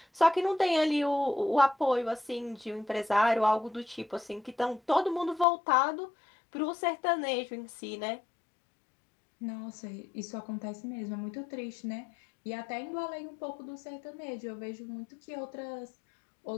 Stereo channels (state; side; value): drops out; right; at 5.5 s